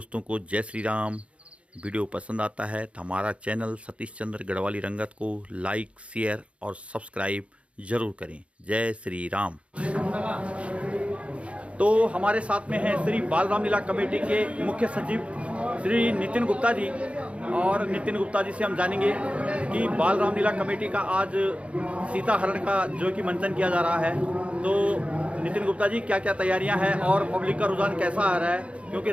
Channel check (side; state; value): left; late; 0.061 ms